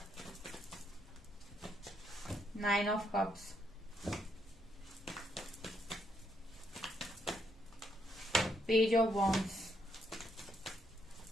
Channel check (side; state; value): both; normal; correlation 0.75